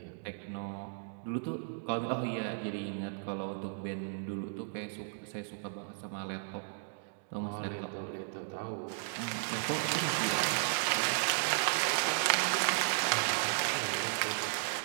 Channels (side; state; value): left; silent; digital silence